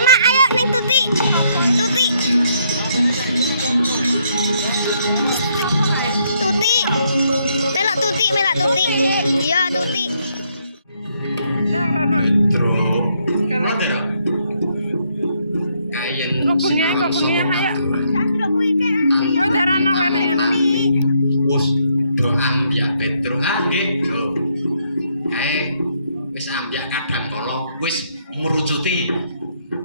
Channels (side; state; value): both; inverted; correlation -0.73